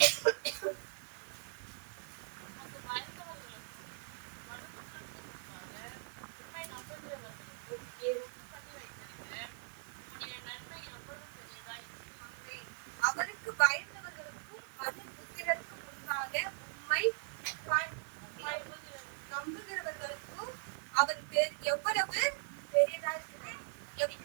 அவருக்கு பயந்தவர்களுக்கும் மனுபுத்திரருக்கு முன்பாக உம்மை நம்புகிறவர்களுக்கும் அவர் எவ்வளவு பெரியதா இருக்கிறார்.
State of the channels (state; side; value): silent; left; digital silence